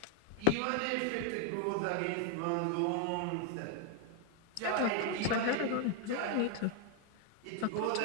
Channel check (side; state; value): both; different; correlation 0.01